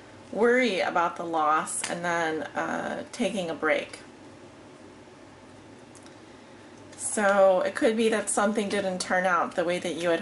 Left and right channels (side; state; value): both; identical; correlation 1.00